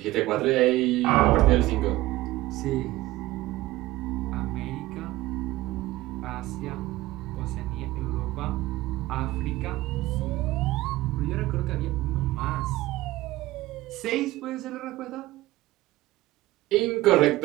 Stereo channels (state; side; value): quieter; left; 17.6 dB